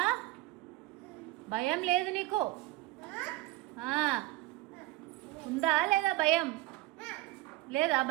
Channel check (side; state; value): left; quieter; 18.1 dB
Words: భయం లేదు నీకు? ఉందా లేదా భయం? లేదా